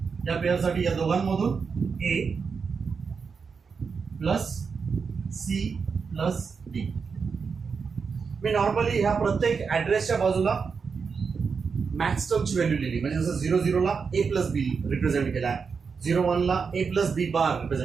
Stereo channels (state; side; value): quieter; left; 5.5 dB